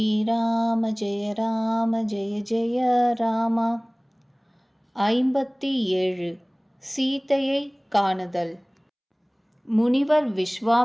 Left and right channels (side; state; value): both; identical; correlation 1.00